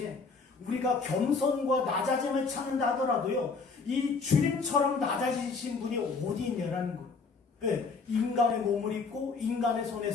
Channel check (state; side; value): quieter; right; 4.6 dB